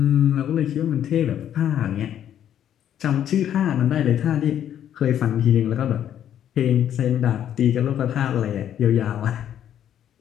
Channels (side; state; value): right; quieter; 10.2 dB